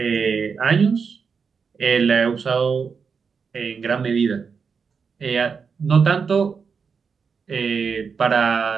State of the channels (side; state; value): left; quieter; 5.8 dB